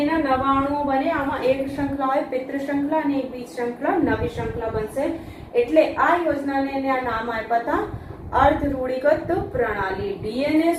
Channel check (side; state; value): both; identical; correlation 1.00